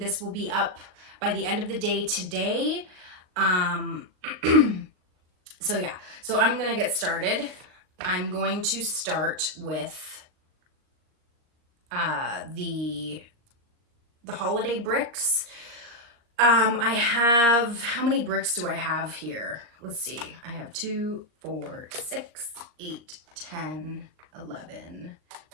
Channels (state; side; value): late; left; 38 ms